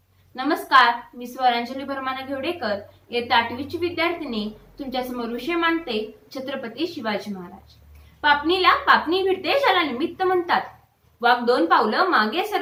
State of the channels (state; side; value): identical; both; correlation 1.00